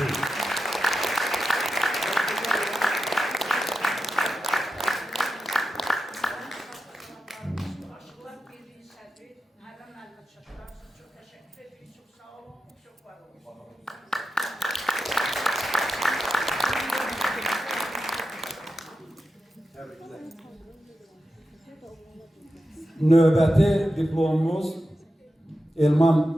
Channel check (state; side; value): normal; both; correlation 0.91